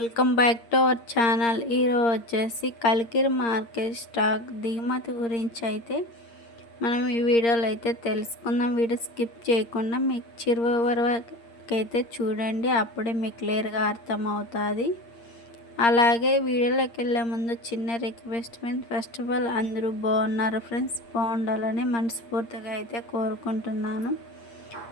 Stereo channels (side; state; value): right; late; 8.6 ms